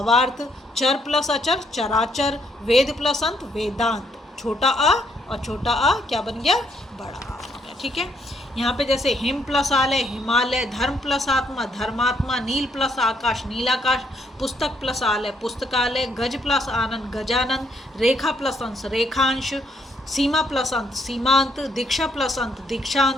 चर प्लस अचर, चराचर। वेद प्लस अंत, वेदांत। छोटा आ और छोटा आ क्या बन गया, बड़ा आ बन गया, ठीक है। यहाँ पे जैसे हिम प्लस आलय, हिमालय। धर्म प्लस आत्मा, धर्मात्मा। नील प्लस आकाश, नीलाकाश। पुस्तक प्लस आलय, पुस्तकालय। गज प्लस आनंद, गजानंद। रेखा प्लस अंश, रेखांश। सीमा प्लस अंत, सीमांत। दीक्षा प्लस अंत,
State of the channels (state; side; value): normal; both; correlation 0.72